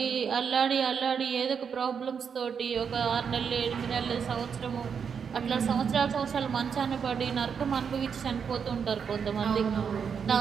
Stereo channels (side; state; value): left; quieter; 6.8 dB